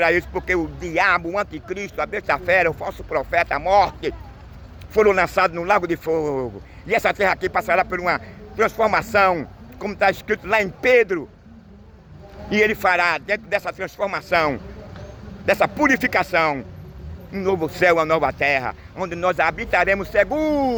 isso, porque o diabo, o anticristo, a besta-fera, o falso profeta, a morte, foram lançados no lago de fogo. E essa terra aqui passará por uma transformação, como está escrito lá em Pedro. E ele fará, dentro dessa transformação, dessa purificação, um novo céu, uma nova terra, onde nós habitaremos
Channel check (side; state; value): both; identical; correlation 1.00